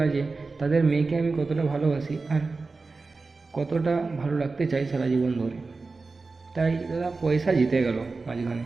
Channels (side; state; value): left; quieter; 3.9 dB